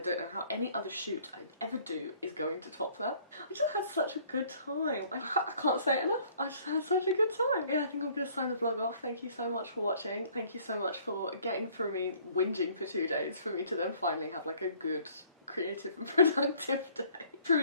know how any other shoot I ever do is going to top that. I just had such a good time. I can't say it enough. I just had such a good time. Yeah, I think I'm gonna sign the vlog off. Thank you so much for watching. Thank you so much for getting through me whinging for 2 days for me to then finally have like a good, creative and productive day.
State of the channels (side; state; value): both; inverted; correlation -0.58